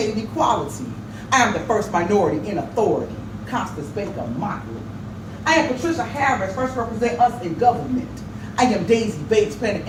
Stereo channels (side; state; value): both; identical; correlation 1.00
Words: equality. I am the first minority in authority, Constance Baker Motley. I am Patricia Harris, first represent us in government. I am Daisy Bates playing an